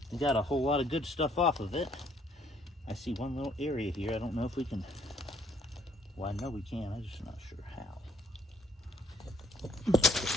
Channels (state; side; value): normal; both; correlation 0.64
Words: We got a whole lot of good stuff off of it. I see one little area here. I don't know if we can. Well, I know we can. I'm just not sure how.